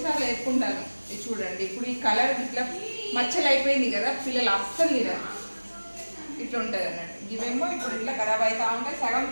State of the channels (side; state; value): both; inverted; correlation -1.00